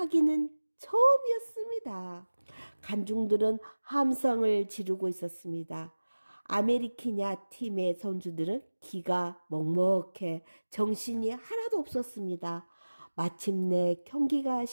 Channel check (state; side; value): inverted; both; correlation -1.00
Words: 처음이었습니다. 관중들은 함성을 지르고 있었습니다. 아메리키냐 팀의 선수들은 기가 먹먹해 정신이 하나도 없었습니다. 마침내 경기가